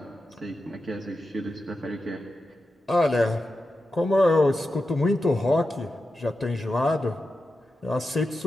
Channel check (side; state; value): both; normal; correlation 0.90